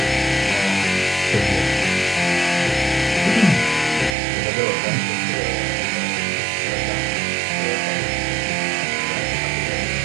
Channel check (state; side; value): drops out; left; at 4.2 s